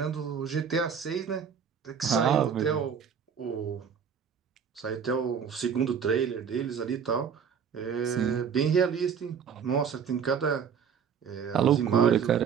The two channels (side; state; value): left; quieter; 7.2 dB